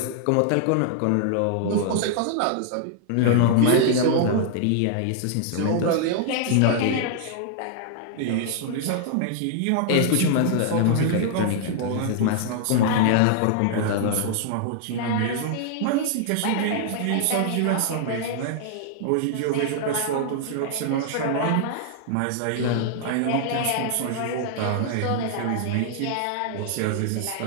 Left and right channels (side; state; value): both; different; correlation -0.01